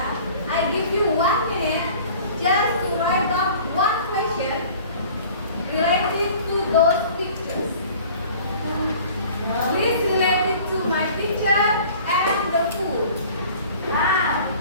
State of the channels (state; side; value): inverted; both; correlation -0.47